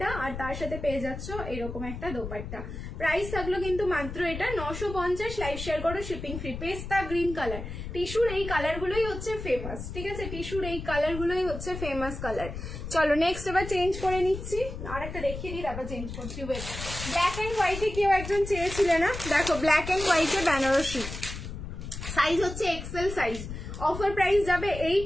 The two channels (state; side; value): noise; left; rumble, 8 dB below the sound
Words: আর তার সাথে পেয়ে যাচ্ছ এরকম একটা দোপাট্টা। প্রাইস থাকলো কিন্তু মাত্র এটা 950, লাইভ শেয়ার করো, শিপিং ফ্রি। পেস্তা গ্রিন কালার, টিস্যুর এই কালারগুলোই হচ্ছে ফেমাস, ঠিক আছে, টিস্যুর এই কালারগুলোই হচ্ছে ফেমাস কালার। চলো নেক্সট এবার চেঞ্জ করে নিচ্ছি, আর একটা দেখিয়ে দিই, তারপর চেঞ্জ করছি। ওয়েট, ব্ল্যাক অ্যান্ড হোয়াইটে কেউ একজন চেয়েছিলে না, দেখো ব্ল্যাক অ্যান্ড হোয়াইটে বেনারসি, সাইজ হচ্ছে এক্সেল সাইজ। অফার প্রাইস যাবে